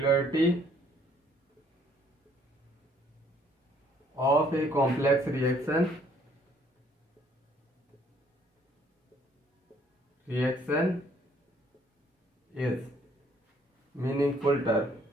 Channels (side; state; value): both; normal; correlation 0.63